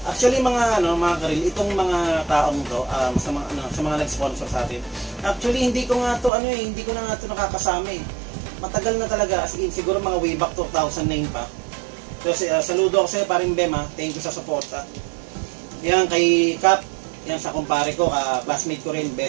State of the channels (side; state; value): left; drops out; at 6.3 s